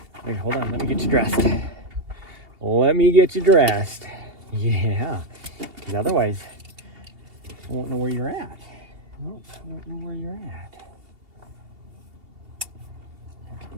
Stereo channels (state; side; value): late; left; 2.7 ms